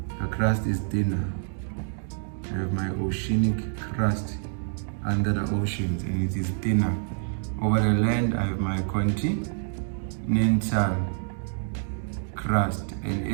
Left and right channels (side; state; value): left; silent; 60 dB below the other